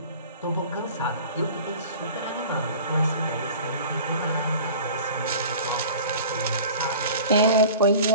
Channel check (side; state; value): both; inverted; correlation -0.41